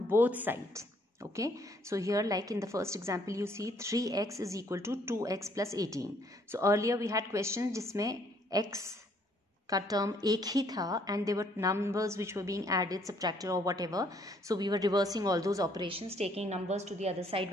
both sides. Okay, so here like in the first example you see 3x is equal to 2x plus 18. So earlier we had questions जिसमें x का term एक ही था and there were numbers which were being added, subtracted or whatever. So we were reversing all those operations, taking numbers to the other side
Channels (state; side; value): normal; both; correlation 0.65